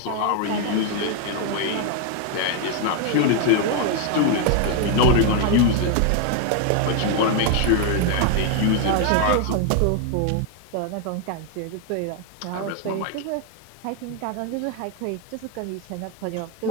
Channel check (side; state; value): both; different; correlation 0.01